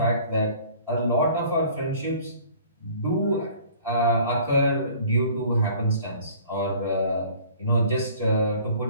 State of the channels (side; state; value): both; inverted; correlation -0.50